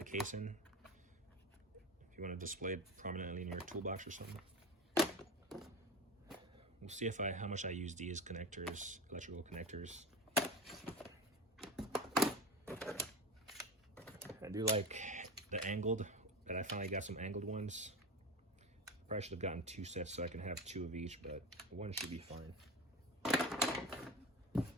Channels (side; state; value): both; normal; correlation 0.26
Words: casing if you want to display it prominently in your toolbox or something. We'll see how much I use these connectors, electrical connectors. I do like the angled, that I finally got some angled ones. Probably should have gotten 2 sets so I can have 2 of each, but one should be fine.